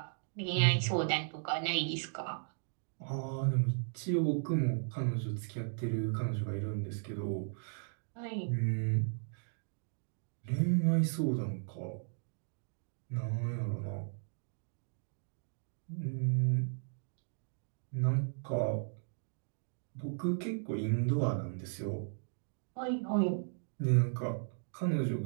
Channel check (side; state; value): left; silent; digital silence